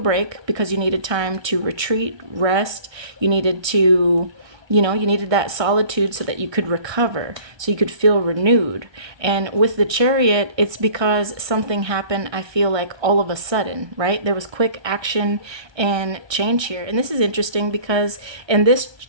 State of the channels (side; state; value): left; late; 1.3 ms